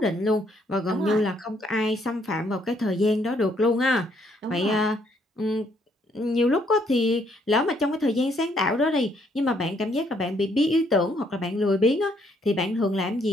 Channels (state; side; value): normal; both; correlation 0.69